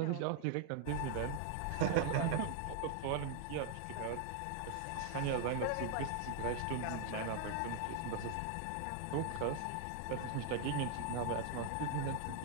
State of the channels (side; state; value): both; different; correlation 0.00